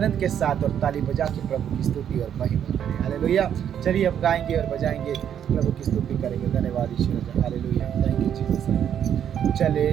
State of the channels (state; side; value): quieter; left; 9.2 dB